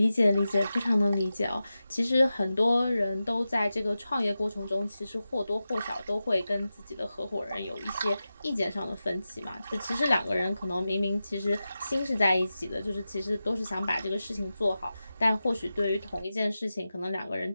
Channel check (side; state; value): both; inverted; correlation -0.93